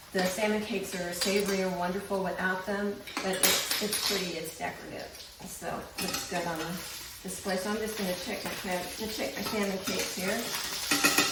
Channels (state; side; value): identical; both; correlation 1.00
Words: The salmon cakes are savory and wonderful without them, but it's pretty, it's decorative. So it looks good on the display. So I'm just going to check my salmon cakes here.